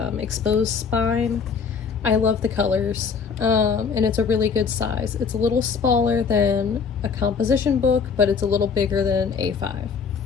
exposed spine. I love the colors, and it's a really good size. It's a little smaller than a composition book, but it's a little bigger than an A5.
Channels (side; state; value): right; quieter; 5.9 dB